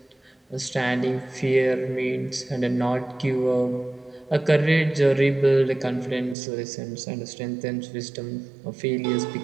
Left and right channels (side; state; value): left; drops out; at 6.4 s